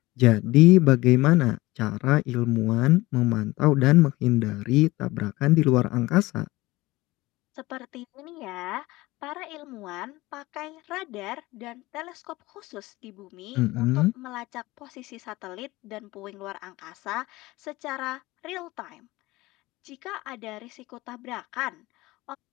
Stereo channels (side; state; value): right; quieter; 19.9 dB